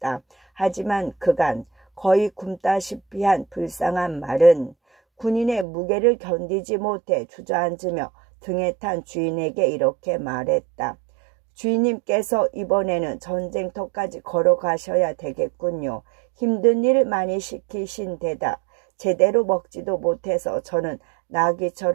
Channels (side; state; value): left; drops out; at 5.7 s